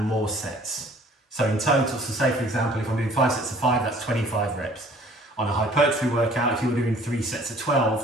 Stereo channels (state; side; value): normal; both; correlation 0.54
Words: more sets. So in total, so say for example, if I'm doing 5 sets of 5, that's 25 reps. On a hypertrophy workout, if you were doing 3 sets of 12,